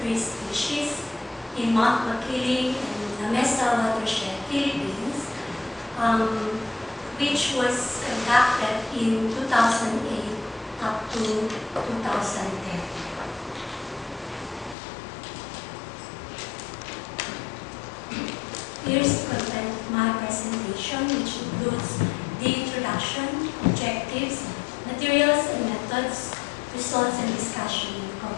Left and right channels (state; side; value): drops out; right; at 14.8 s